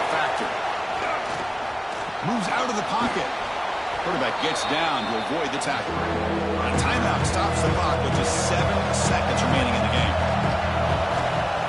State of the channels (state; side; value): identical; both; correlation 1.00